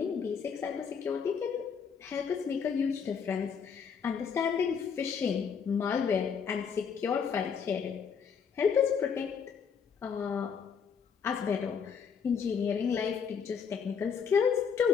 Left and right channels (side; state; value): right; quieter; 6.6 dB